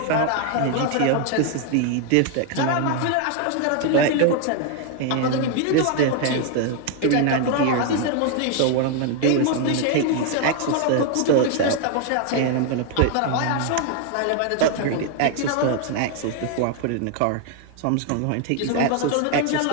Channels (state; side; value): different; both; correlation 0.00